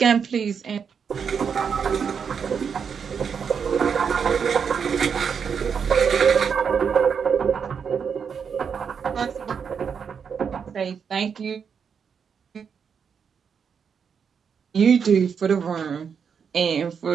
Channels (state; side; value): quieter; left; 6.7 dB